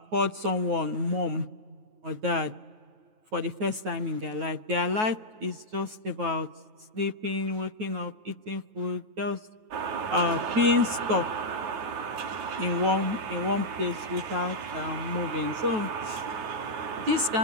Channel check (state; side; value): late; left; 9.3 ms